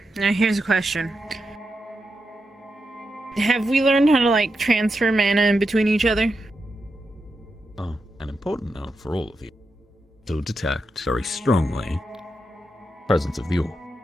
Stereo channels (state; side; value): normal; both; correlation 0.87